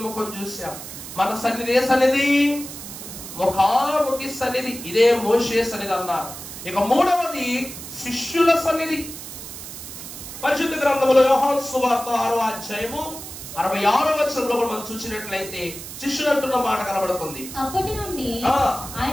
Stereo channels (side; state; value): right; noise; hiss, 11 dB below the sound